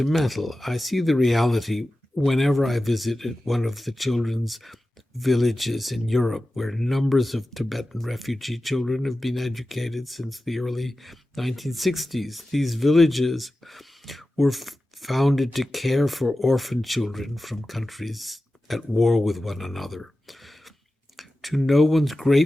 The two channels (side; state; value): both; normal; correlation 0.94